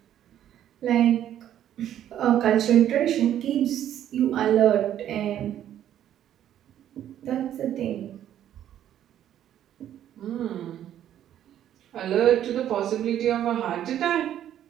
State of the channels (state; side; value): quieter; left; 11.0 dB